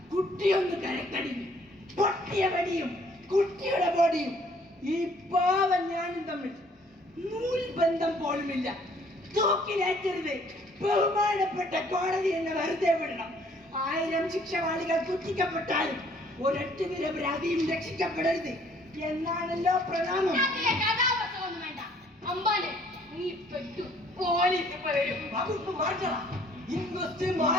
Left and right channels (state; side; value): normal; both; correlation 0.60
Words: കുട്ടിയൊന്ന് കരക്കടിഞ്ഞു. പൊട്ടിയ വെടിയും കുട്ടിയുടെ ബോഡിയും ഈ പാവം ഞാനും തമ്മിൽ നൂൽബന്ധം പോലുമില്ല. തൂക്കിലേറ്റരുത്. ബഹുമാനപ്പെട്ട കോടതി എന്നെ വെറുതെ വിടണം. 1000 ശിക്ഷവാളികൾ കുത്തിക്കപ്പെട്ടാലും ഒരൊറ്റ നിരപരാധിയും രക്ഷിക്കപ്പെടരുത് എന്നാണല്ലോ പ്രണാമം. വകുപ്പ് മാറ്റണം. ഇൻവെസ്റ്റ്